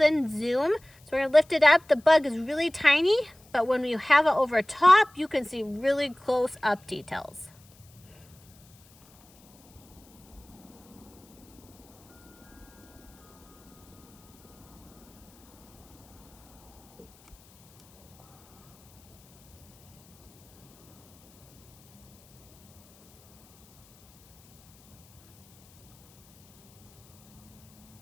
zoom. So we're gonna lift it up. The bug is really tiny, but when you have it over top, you can see really close up details.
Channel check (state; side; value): noise; left; hiss, 28 dB below the sound